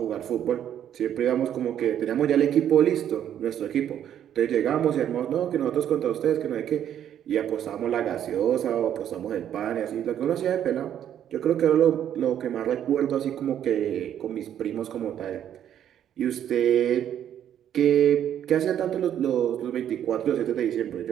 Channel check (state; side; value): quieter; left; 10.1 dB